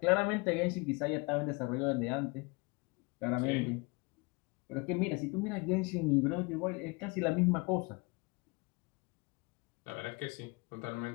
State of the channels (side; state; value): right; quieter; 28.0 dB